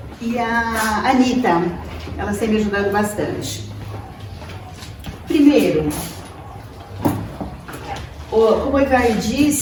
E a Anitta, elas têm me ajudado bastante. Primeiro, como o Ivar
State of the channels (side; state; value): both; identical; correlation 1.00